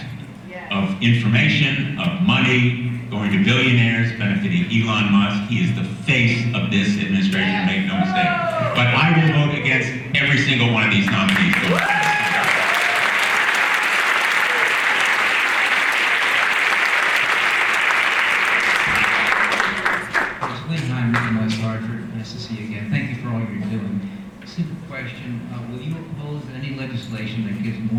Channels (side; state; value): both; identical; correlation 1.00